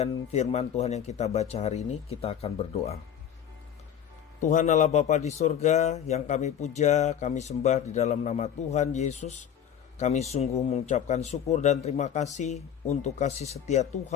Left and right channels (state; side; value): quieter; right; 9.2 dB